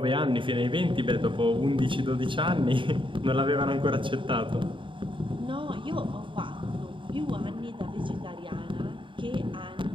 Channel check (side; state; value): left; late; 0.24 ms